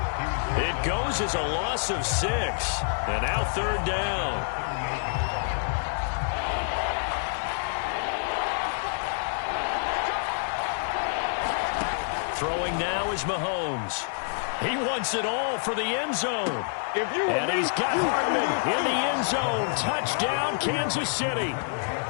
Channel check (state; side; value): silent; right; 60 dB below the other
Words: It goes as a loss of 6. And now 3rd down. Throwing now is Mahomes. He wants it all for the end zone. And he's got Hardman in the end zone. Touchdown, Kansas City.